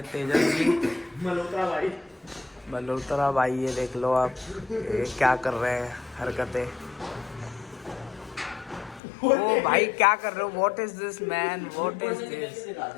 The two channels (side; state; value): right; drops out; at 9.0 s